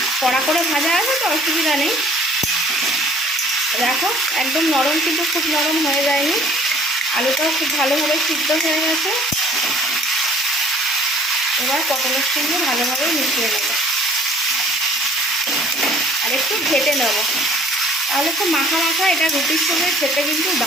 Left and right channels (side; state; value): both; normal; correlation 0.55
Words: কড়া করে ভাজা আছে তো অসুবিধা নেই। দেখো একদম নরম, কিন্তু খুব নরম হয়ে যায়নি, আলুটাও খুব ভালোভাবে সিদ্ধ হয়ে গেছে। এবার পটলের সঙ্গে ভালোভাবে মিশিয়ে নেব আর একটু ঘেটে নেব, তাহলে খুব মাখা মাখা এটা রুটির সঙ্গে খেতে কিন্তু